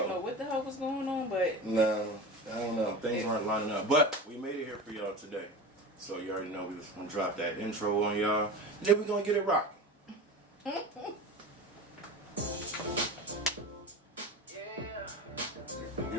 know what the hell was going on, but... No, I don't know. Things aren't lining up. But we made it here for y'all today. So you already know we just going to drop that intro on y'all. And then we're going to get it rocking.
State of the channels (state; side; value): normal; both; correlation 0.29